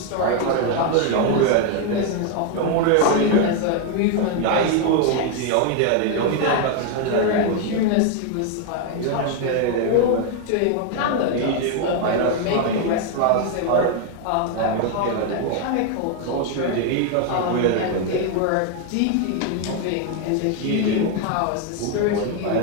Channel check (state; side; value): different; both; correlation 0.01